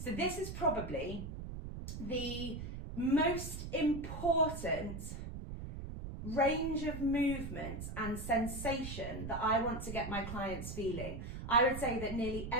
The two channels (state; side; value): noise; right; rumble, 7 dB below the sound